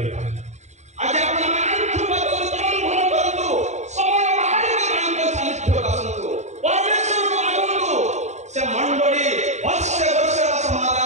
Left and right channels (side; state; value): left; late; 0.33 ms